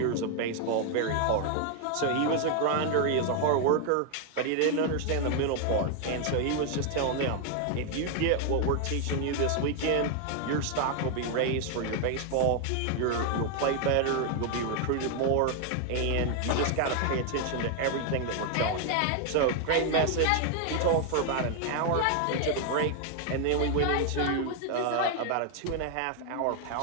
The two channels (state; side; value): different; both; correlation 0.00